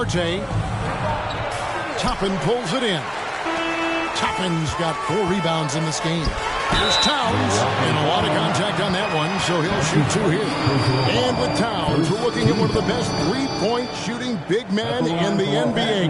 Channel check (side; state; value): both; identical; correlation 1.00